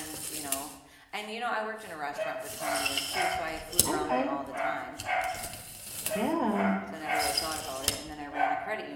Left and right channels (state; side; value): identical; both; correlation 1.00